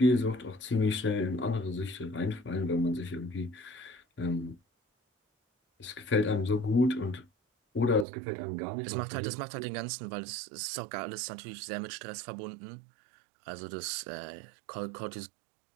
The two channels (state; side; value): drops out; left; at 8.1 s